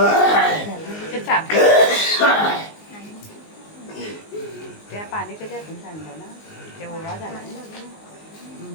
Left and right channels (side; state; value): right; late; 19 ms